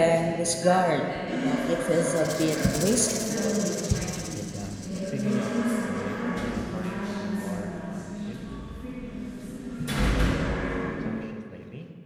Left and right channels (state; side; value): identical; both; correlation 1.00